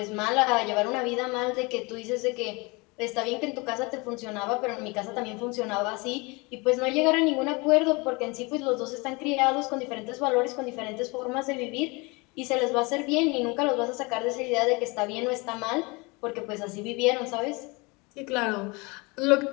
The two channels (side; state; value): right; quieter; 27.0 dB